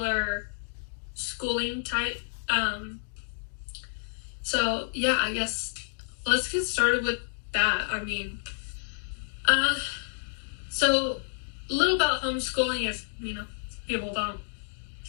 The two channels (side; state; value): right; silent; digital silence